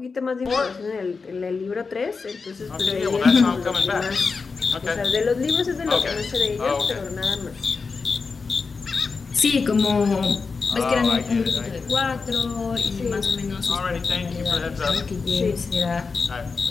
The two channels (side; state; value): right; quieter; 4.7 dB